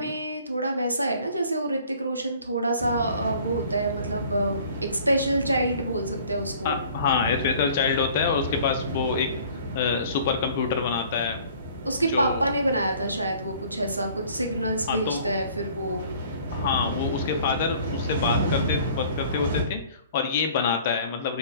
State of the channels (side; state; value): both; inverted; correlation -0.52